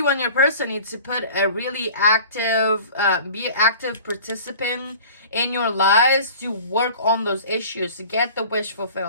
and your person need to put a really active, be active participant in your lives to work on those issues, to get the wish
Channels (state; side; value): inverted; both; correlation -0.44